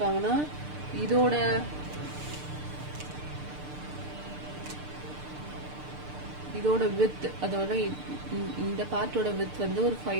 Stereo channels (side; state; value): left; late; 6.7 ms